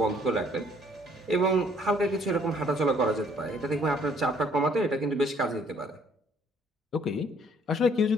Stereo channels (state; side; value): normal; both; correlation 0.62